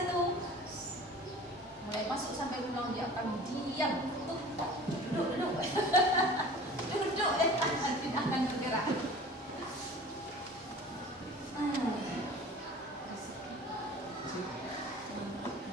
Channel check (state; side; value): normal; both; correlation 0.43